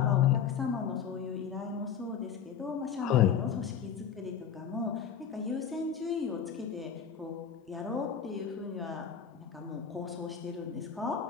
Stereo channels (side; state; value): right; quieter; 7.7 dB